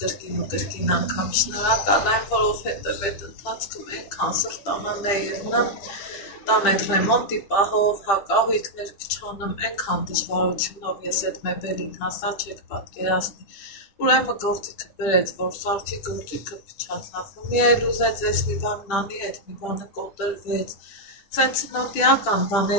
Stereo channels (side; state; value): right; late; 10 ms